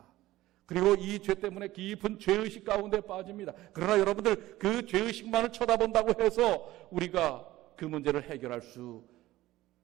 그리고 이 죄 때문에 깊은 죄의식 가운데 빠집니다. 그러나 여러분들, 그 죄의식만을 쳐다본다고 해서 우리가 그 문제를 해결할 수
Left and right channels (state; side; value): quieter; left; 16.5 dB